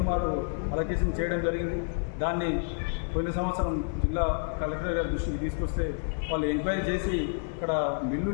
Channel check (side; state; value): right; silent; digital silence